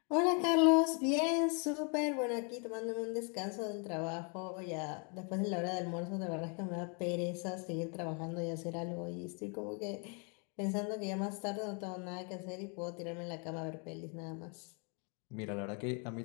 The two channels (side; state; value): right; quieter; 36.9 dB